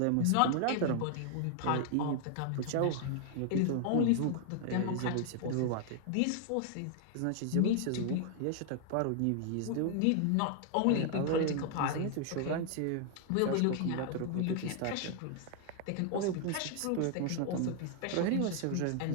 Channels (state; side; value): different; both; correlation 0.00